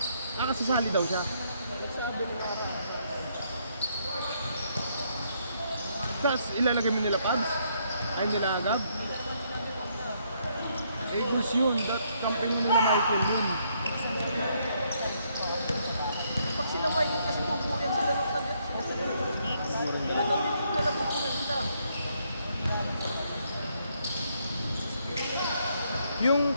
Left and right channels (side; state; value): both; inverted; correlation -0.72